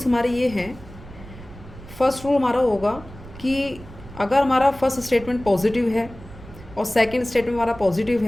हमारे ये हैं। फर्स्ट रूल हमारा होगा कि अगर हमारा फर्स्ट स्टेटमेंट पॉजिटिव है और सेकंड स्टेटमेंट हमारा पॉजिटिव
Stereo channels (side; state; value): right; noise; rumble, 17 dB below the sound